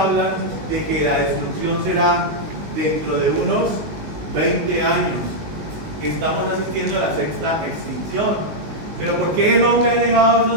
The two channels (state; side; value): late; left; 19 ms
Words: de que la destrucción será dentro de unos 20 años. Estamos asistiendo a la sexta extinción. ¿Pero por qué el hombre ha